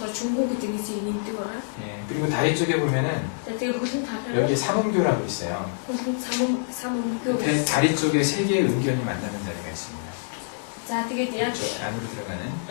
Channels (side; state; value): right; silent; 61 dB below the other